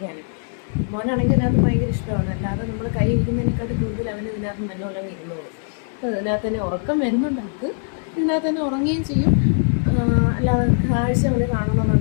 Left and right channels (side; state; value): right; silent; 65 dB below the other